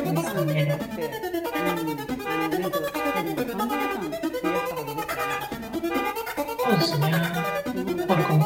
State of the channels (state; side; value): identical; both; correlation 1.00